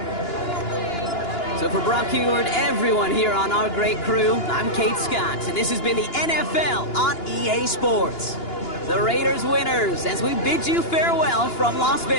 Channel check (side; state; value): right; late; 2.9 ms